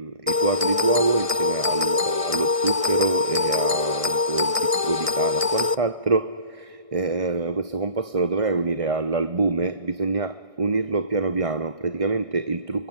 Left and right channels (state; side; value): late; left; 1.6 ms